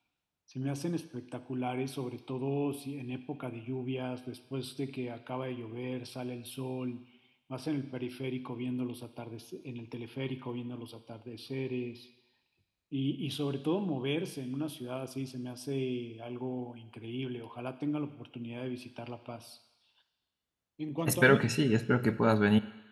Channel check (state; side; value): identical; both; correlation 1.00